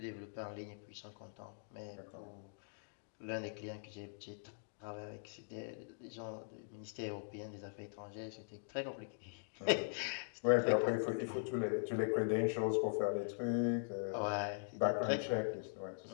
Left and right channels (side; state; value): right; silent; digital silence